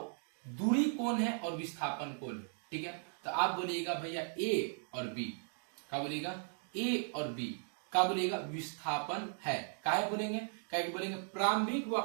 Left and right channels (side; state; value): left; silent; 53 dB below the other